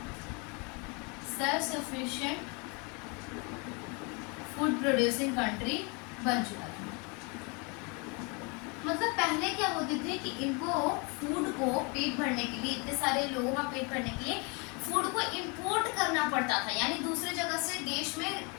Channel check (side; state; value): right; quieter; 31.5 dB